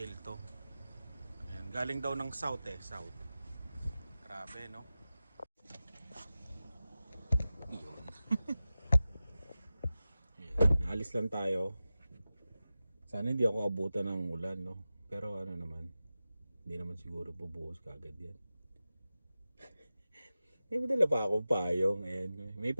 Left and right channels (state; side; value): inverted; both; correlation -0.94